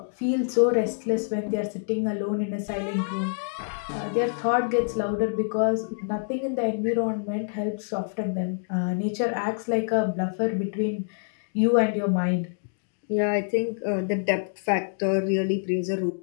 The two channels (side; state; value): right; silent; digital silence